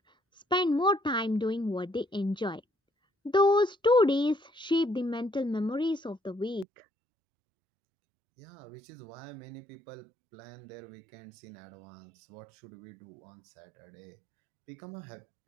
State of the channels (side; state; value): left; drops out; at 6.7 s